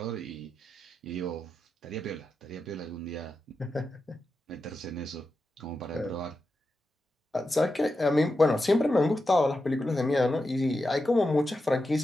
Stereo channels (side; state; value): both; normal; correlation 0.89